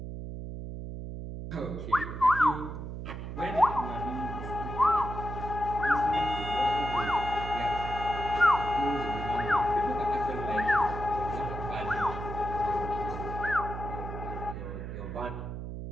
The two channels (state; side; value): noise; right; hum, 7 dB below the sound